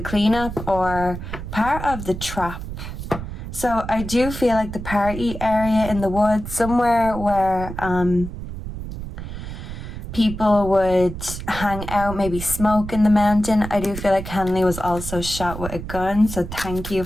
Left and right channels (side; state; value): right; noise; rumble, 8 dB below the sound